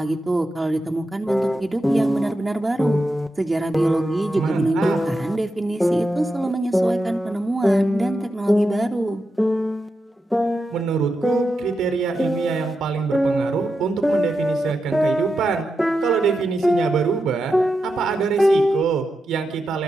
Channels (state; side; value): normal; both; correlation 0.88